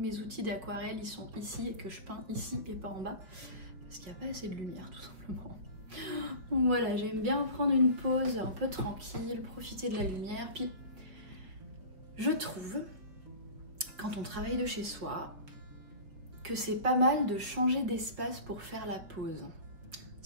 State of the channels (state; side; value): late; left; 5.2 ms